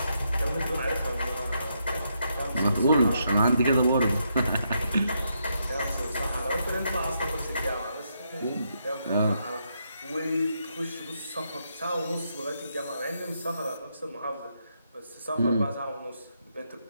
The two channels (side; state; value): both; inverted; correlation -0.79